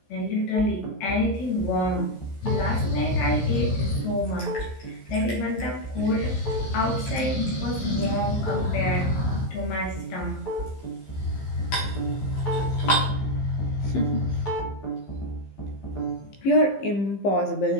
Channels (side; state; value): right; late; 15 ms